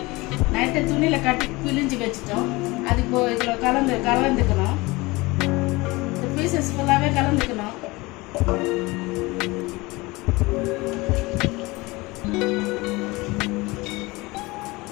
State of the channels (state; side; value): quieter; right; 22.7 dB